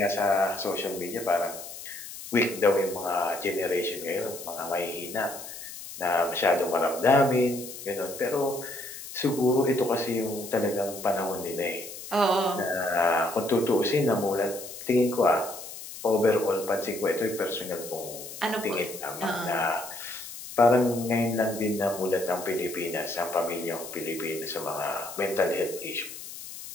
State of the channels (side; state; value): left; noise; hiss, 12 dB below the sound